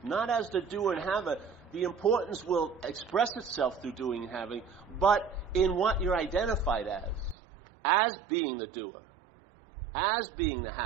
Not as the doer and haver. The importance will express itself through doing and having, but in what you're identified as being the doer, as being the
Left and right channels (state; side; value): drops out; left; at 7.4 s